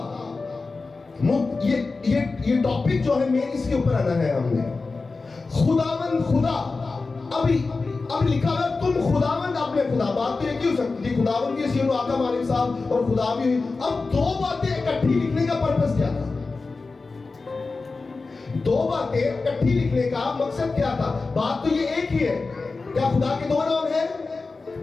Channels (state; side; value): quieter; right; 3.9 dB